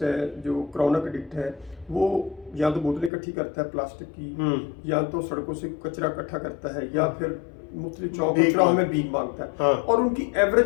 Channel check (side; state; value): right; drops out; at 3.1 s